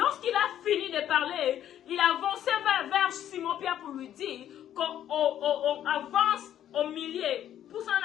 a fini de parler, il avançait vers Simon-Pierre pour lui dire qu'on avance au milieu, pousse en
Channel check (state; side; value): quieter; right; 11.0 dB